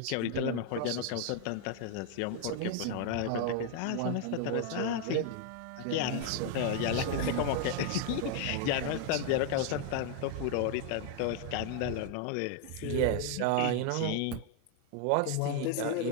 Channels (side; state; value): both; different; correlation 0.00